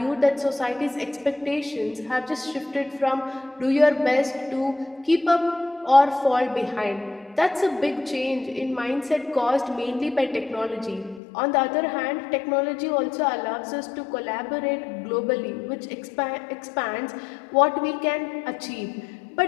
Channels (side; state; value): right; drops out; at 11.2 s